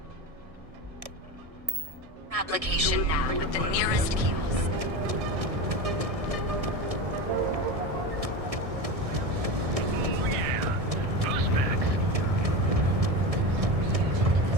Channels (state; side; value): late; left; 1.6 ms